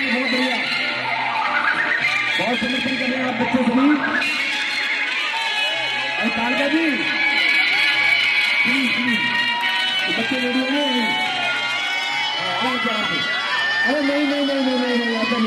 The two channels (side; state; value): both; identical; correlation 1.00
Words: बढ़िया, बहुत समर्थन कर रहे हैं आप बच्चे सभी। और कालका जी बच्चे रेडियो में अरे नहीं ऐसा